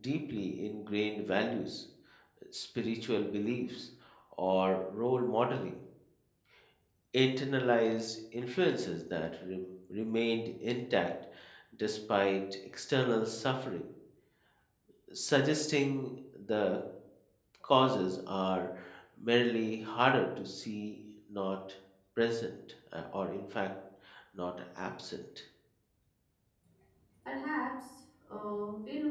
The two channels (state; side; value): identical; both; correlation 1.00